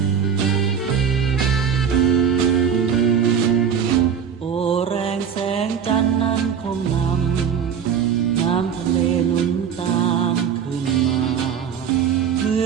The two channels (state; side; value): quieter; left; 7.6 dB